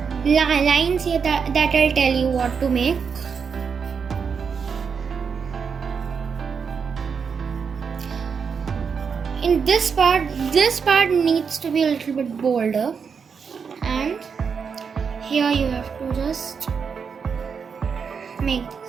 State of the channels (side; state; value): left; quieter; 6.1 dB